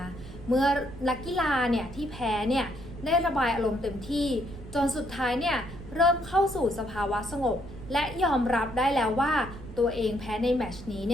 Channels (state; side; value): noise; right; rumble, 14 dB below the sound